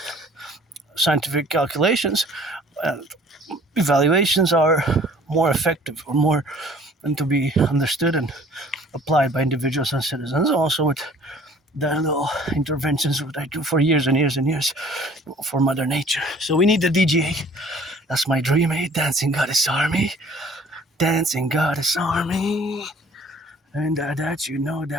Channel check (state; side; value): normal; both; correlation 0.53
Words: scientific calculations evaluations are more effective or more and to be understood and applied by individuals and citizens. Also with the little interventions that I do for years and years and years for Mother Nature. So we need the DGA. That's my dream, Dancing Goddess Army. Dancing Goddess Army. And that you know,